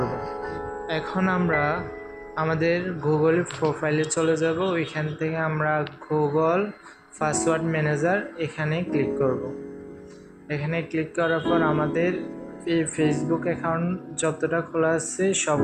এখন আমরা আমাদের গুগল প্রোফাইলে চলে যাব। ওইখান থেকে আমরা গুগল পাসওয়ার্ড ম্যানেজার এখানে ক্লিক করব। এখানে ক্লিক করার পর আমাদের এই ফেসবুক অ্যাকাউন্ট যতটা খোলা আছে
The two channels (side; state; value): both; identical; correlation 1.00